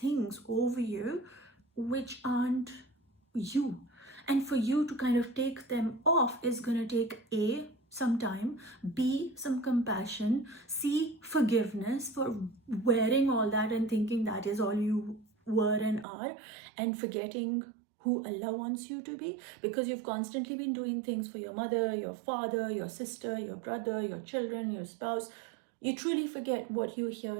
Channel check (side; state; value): left; drops out; at 16.1 s